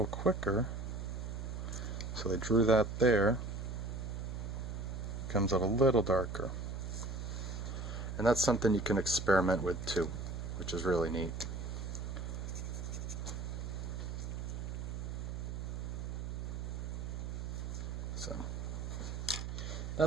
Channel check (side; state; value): right; noise; hum, 5 dB below the sound